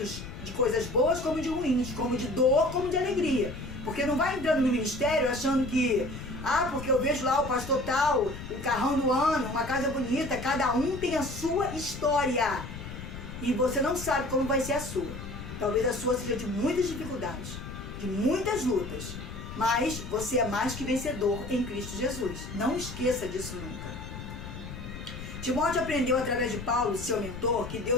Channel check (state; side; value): noise; left; rumble, 10 dB below the sound